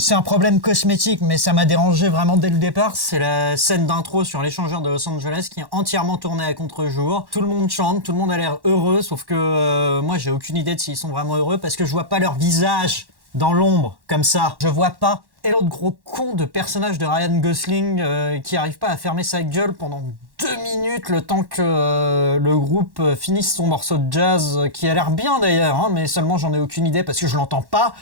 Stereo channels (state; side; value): late; left; 1.1 ms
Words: un problème cosmétique, mais ça m'a dérangé vraiment dès le départ. C'est la scène d'intro sur l'échangeur de Los Angeles qui est entièrement tournée à contre-jour. Tout le monde chante, tout le monde a l'air heureux, sauf que moi, j'ai aucune idée de s'ils sont vraiment heureux parce que je vois pas leur visage dans l'ombre, comme ça. Je vois pas. Et l'autre gros con de personnage de Ryan Gosling qui arrive pas à fermer sa gueule pendant 2 minutes le temps que le groupe finisse son morceau de jazz qui a l'air bien d'ailleurs, hein, mais seulement j'en ai aucune idée parce que je l'entends pas.